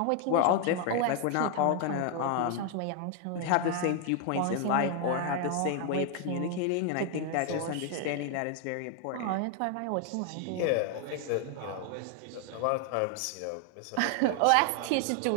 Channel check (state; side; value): different; both; correlation 0.01